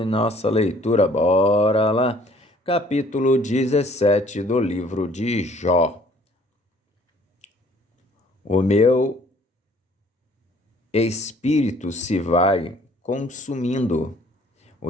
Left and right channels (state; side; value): normal; both; correlation 0.58